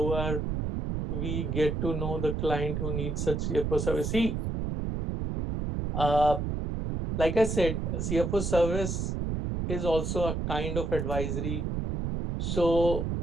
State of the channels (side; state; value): right; noise; rumble, 2 dB below the sound